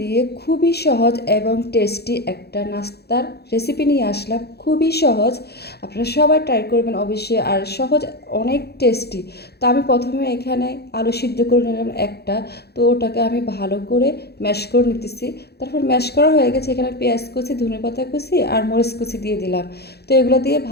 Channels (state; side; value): late; right; 0.47 ms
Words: দিয়ে খুবই সহজ এবং টেস্টি একটা নাস্তার রেসিপি নিয়ে আসলাম। খুবই সহজ, আপনারা সবাই ট্রাই করবেন অবশ্যই। আর সহজ, অনেক টেস্টি। তো আমি প্রথমে এখানে আলু সিদ্ধ করে নিলাম একটা। তো ওটাকে আমি ভালো করে ম্যাশ করে নিতেছি। তারপর ম্যাশ করা হয়ে গেছে, এখানে পেঁয়াজ কুচি, ধনেপাতা কুচি আর মরিচ কুচি দিয়ে দিলাম। তো এগুলো দিয়ে